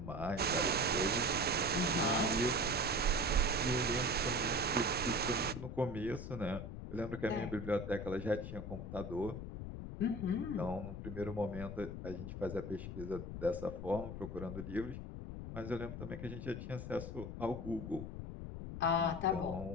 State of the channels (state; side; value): noise; left; rumble, 7 dB below the sound